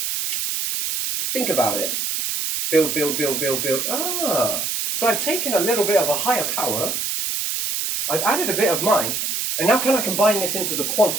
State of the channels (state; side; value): noise; right; hiss, 1 dB below the sound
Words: think about it. Build, build, build, build, build. So I've taken a little bit of a higher power, I've added a bit of mine, and now can I combine this into the